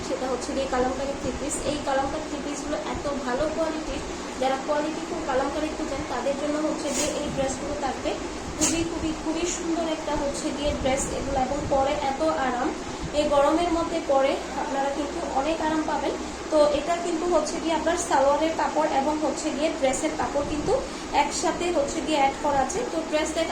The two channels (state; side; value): identical; both; correlation 1.00